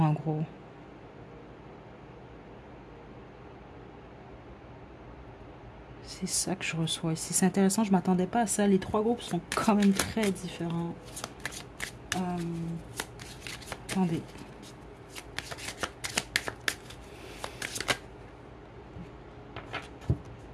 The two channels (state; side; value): identical; both; correlation 1.00